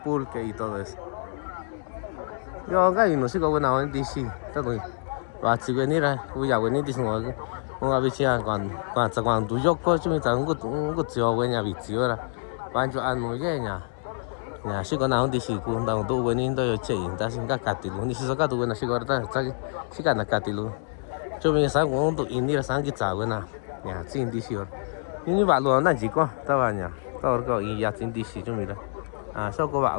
pulque y todo eso. Yo acá no sé cómo buena onda sí, está muy si venir voy a venir diciendo un abichia cuando tú yo coche me está un tío buena bichiora pancho anu ya sí con nada dice cuando tú veniendo yo che está sin catilu ni si saca tu buena sí corta está sí gana catilu yo me sa un tu india sang que cha buena ya sin dice ni va lo na chico estaba ya todo個y ya sin dice yo mira sau có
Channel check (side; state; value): right; silent; 61 dB below the other